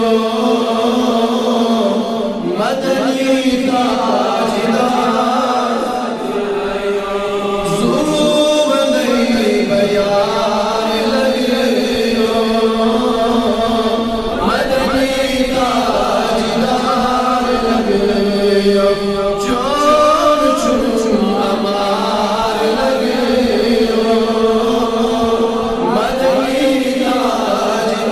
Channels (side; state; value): both; identical; correlation 1.00